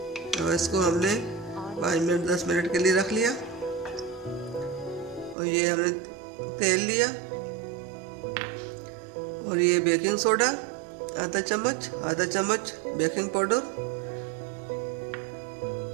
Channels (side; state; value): left; drops out; at 5.4 s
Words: और इसको हमने 5 मिनट 10 मिनट के लिए रख लिया। और ये हमने तेल लिया और ये बेकिंग सोडा आधा चम्मच बेकिंग पाउडर।